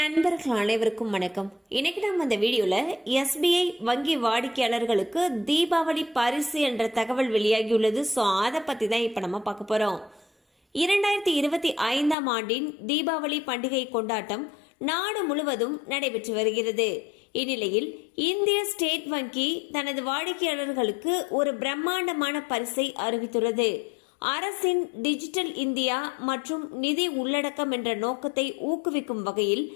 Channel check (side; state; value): right; drops out; at 12.2 s